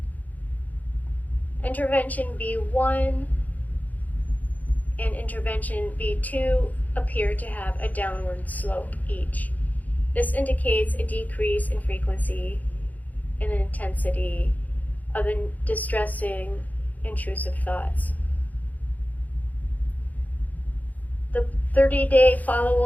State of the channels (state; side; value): late; right; 0.079 ms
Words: Intervention B1 and intervention B2 appear to have a downward slope each. This indicates a decrease in frequency and intensity of distressing intrusive thoughts. The 30-day